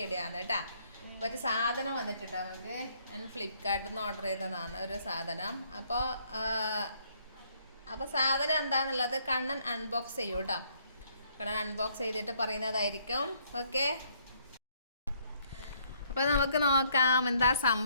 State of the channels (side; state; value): both; inverted; correlation -0.67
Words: ആണ് കേട്ടോ. ഒരു സാധനം വന്നിട്ടുണ്ട് നമുക്ക്. ഞാൻ ഫ്ലിപ്കാർട്ടിൽ നിന്ന് ഓർഡർ ചെയ്തതാണ് ഒരു സാധനം. അപ്പോൾ സാധനം എന്താണെന്നുള്ളത് കണ്ണൻ അൺബോക്സ് ചെയ്യൂ കേട്ടോ. കണ്ണൻ അൺബോക്സ് ചെയ്തിട്ട് പറയുന്നതായിരിക്കും. ഓക്കെ, അപ്പോൾ നമുക്ക് നോക്കാം എന്താ